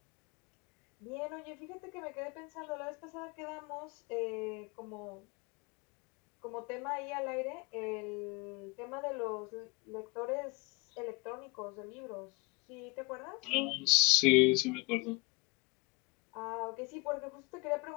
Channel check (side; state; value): right; quieter; 26.2 dB